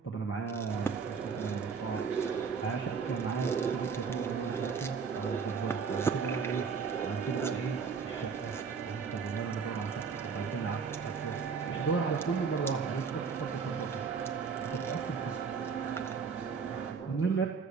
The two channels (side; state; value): left; quieter; 5.7 dB